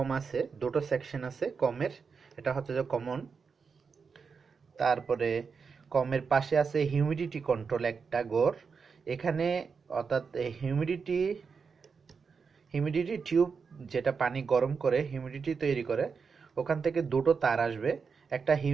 আছে, দুটো সেকশন আছে কমের, এটা হচ্ছে যে কমন। তারপরে কমের পাশে আছে হিউমিডিটি কন্ট্রোল একটা গড় এখানে, অর্থাৎ হিউমিডিটি টিউব যেটা পানি গরম করে হিউমিডিটি তৈরি করে, ওখান থেকে দুটো তার আসবে, একটা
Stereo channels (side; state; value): left; quieter; 5.5 dB